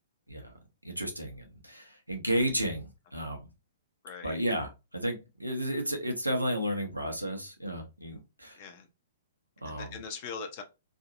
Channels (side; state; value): both; inverted; correlation -0.76